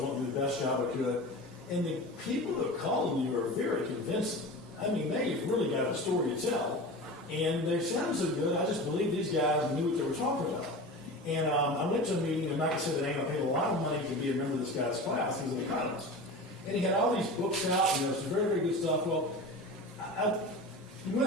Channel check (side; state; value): both; normal; correlation 0.32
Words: wanting to do the best job I could. And the people that called me were very convincing. I mean, they've really got a story to tell. And they sound so good, I just believe these guys knew what they were talking about. And I went to a meeting, and like I said, I paid a lot of money to be a member of this guy's class. He was an economist. And he had all these books out, some very, very good stuff. Well, when